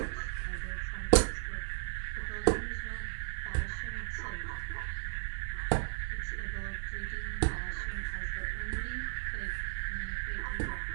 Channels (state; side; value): silent; left; 54 dB below the other